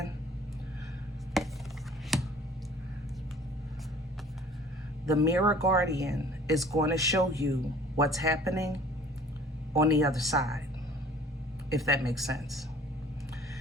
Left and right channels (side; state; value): both; normal; correlation 0.50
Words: The mirror guardian is going to show you what's happening on the other side, if that makes sense.